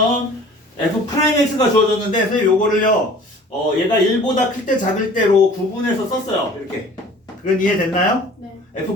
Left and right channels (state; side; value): normal; both; correlation 0.47